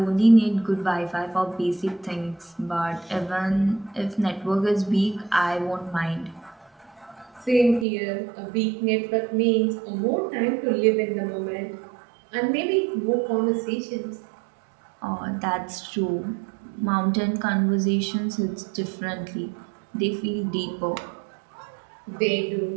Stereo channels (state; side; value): drops out; left; at 7.9 s